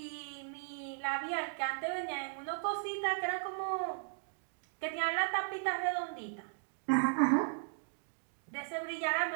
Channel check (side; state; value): left; silent; digital silence